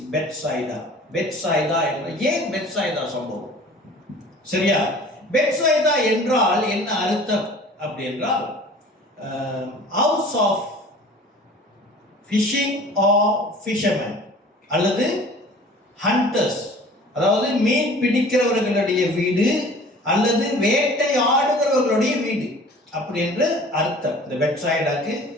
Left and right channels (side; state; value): both; normal; correlation 0.46